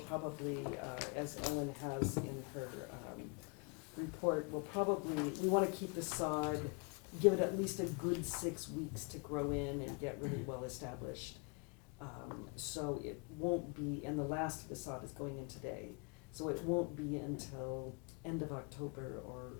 probably, as Ellen has in her report, we want to keep the sod, give it at least a good 6 weeks to grow in and get really well established. So it won't be, and the last of the sod is going in today, so it won't be until end of October or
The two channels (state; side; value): quieter; right; 32.5 dB